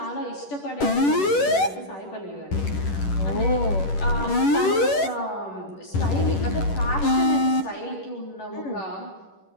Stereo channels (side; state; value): right; late; 11 ms